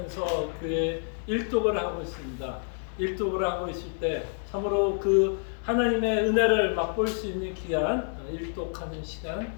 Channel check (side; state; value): right; silent; 59 dB below the other